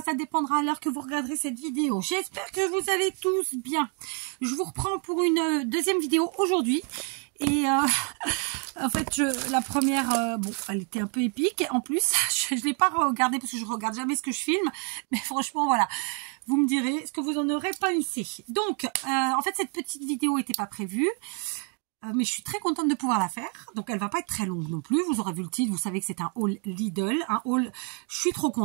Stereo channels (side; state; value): left; quieter; 38.9 dB